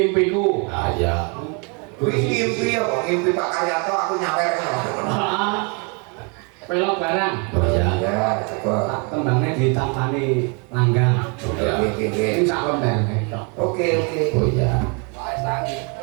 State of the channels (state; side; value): quieter; left; 34.5 dB